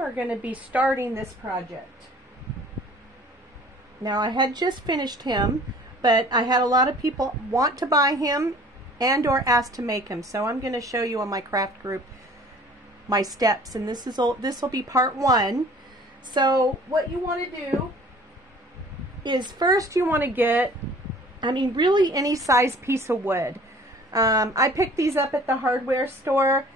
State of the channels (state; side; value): normal; both; correlation 0.50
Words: going to be starting this project. Now, I had just finished him, but I had a lot of people want to buy him and or ask to make him. So I'm going to show you on my craft group my steps, and this will be part one. So what you want to do is first you want to get, really any size piece of wood. I picked these up at the hardware store